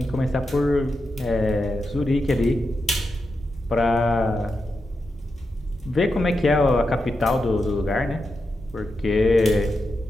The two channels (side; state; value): both; normal; correlation 0.87